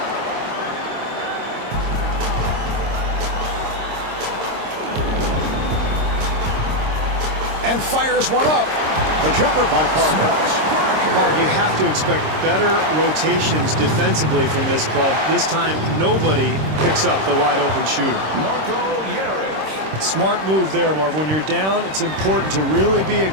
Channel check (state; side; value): late; left; 26 ms